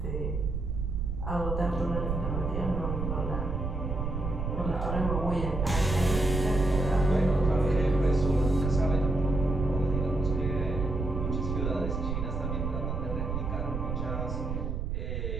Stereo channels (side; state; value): right; noise; rumble, 2 dB below the sound